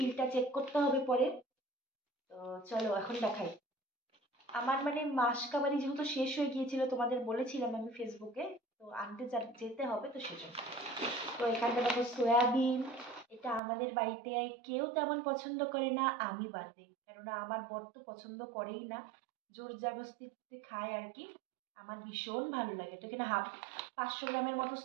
চেক করতে হবে পরে। তো চলো এখন দেখাই। আমার মানে মাসকাবারি যেহেতু শেষ হয়ে গিয়েছিল, তোমাদের বলেছিলাম আমি ফেসবুকে, তো আনতে যেতে হবে, তো সেজন্য। তো এখানটা দেখো সয়াবিন। এটা আমাদের বাড়িতে কেউ তেমন পছন্দ করে না, আমি বাদে, কেননা আমার বর তো পছন্দ করেই না, জোর জবরদস্তিতে খায় আর কি। আমার ভীষণ ভালো লাগে। তো এখানে 500 গ্রামের মতো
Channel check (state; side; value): drops out; left; at 13.6 s